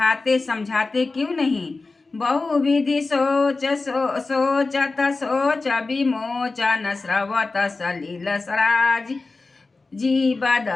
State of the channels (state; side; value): quieter; right; 3.7 dB